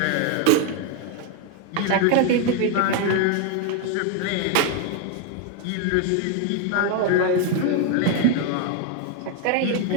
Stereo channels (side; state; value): both; different; correlation 0.01